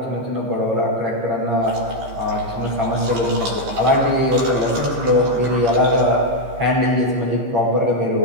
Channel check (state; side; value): late; left; 15 ms